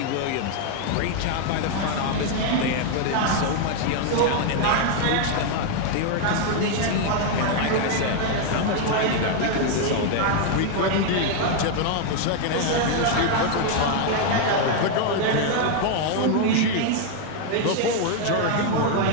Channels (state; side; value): different; both; correlation 0.00